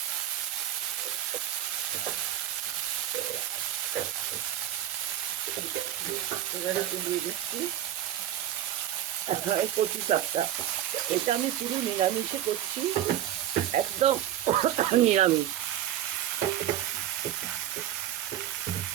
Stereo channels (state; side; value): quieter; left; 11.8 dB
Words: এবারে একটু দিয়ে দিচ্ছি কচু শাকটা। এটা আমি পুরো নিরামিষে করছি, একদম নিরামিষ।